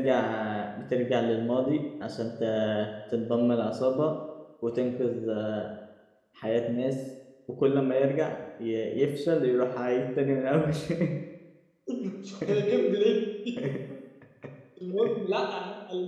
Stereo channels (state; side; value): identical; both; correlation 1.00